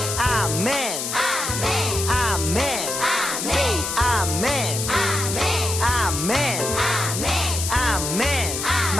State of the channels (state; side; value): noise; left; hiss, 3 dB below the sound